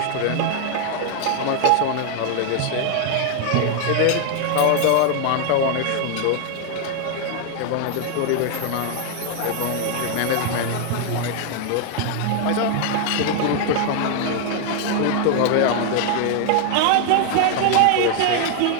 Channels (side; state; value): both; different; correlation 0.00